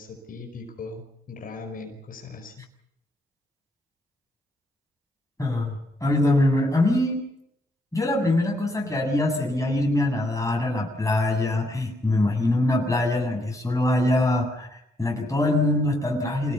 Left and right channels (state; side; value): normal; both; correlation 0.75